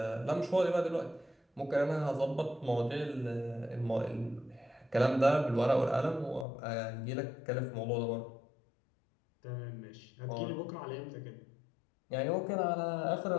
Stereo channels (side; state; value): right; drops out; at 6.5 s